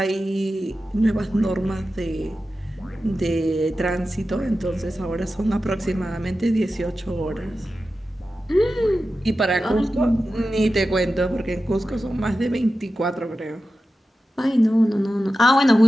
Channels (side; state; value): both; normal; correlation 0.93